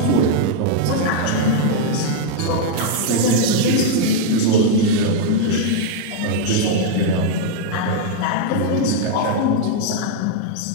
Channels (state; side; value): different; both; correlation -0.01